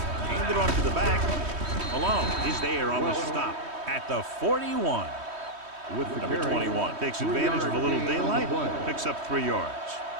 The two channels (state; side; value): late; left; 3.1 ms